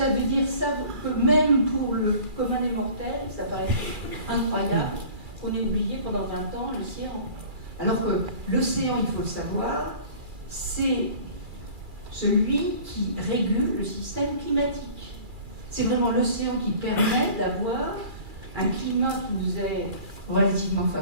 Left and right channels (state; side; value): late; left; 2.4 ms